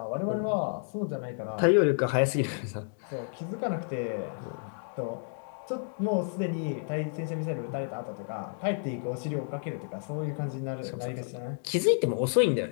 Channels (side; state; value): right; silent; digital silence